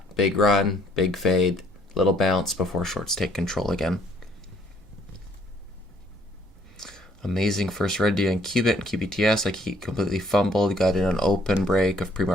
Big run, big fade, little bounce before shorts take control again. Amazing first red day on Qubit and QBTS. Completely fumbled. Got in an open break of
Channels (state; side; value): normal; both; correlation 0.63